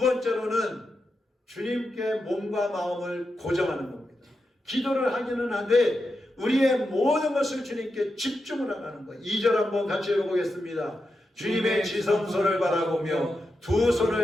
주님께 몸과 마음을 고정하는 겁니다. 기도를 하기는 한데 우리의 모든 것을 주님께 집중을 하라는 거예요. 2절 한번 같이 읽어보겠습니다. 주님의 지성소를 바라보며 두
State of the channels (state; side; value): normal; both; correlation 0.88